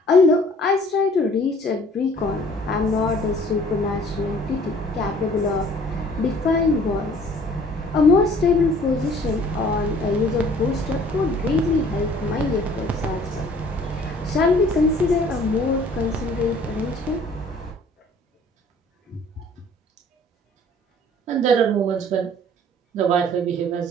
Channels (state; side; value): normal; both; correlation 0.54